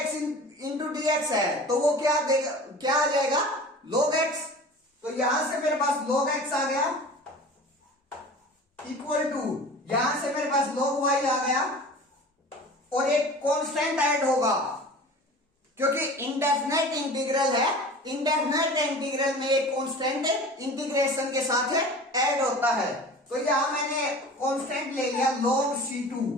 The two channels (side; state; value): both; normal; correlation 0.39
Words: इंटू dx है, तो वो क्या देगा? क्या आ जाएगा? log x। तो यहां से मेरे पास log x आ गया इक्वल टू, यहां से मेरे पास log y आ गया और एक कांस्टेंट ऐड होगा क्योंकि इंडेफिनेट इंटीग्रल है। इंडेफिनेट इंटीग्रल में एक कांस्टेंट इंटीग्रेशन के साथ ऐड होता है। तो यहां मैंने कांस्टेंट ले लिया log c2।